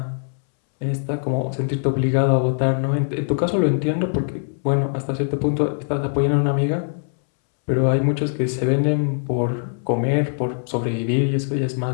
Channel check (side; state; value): right; silent; 64 dB below the other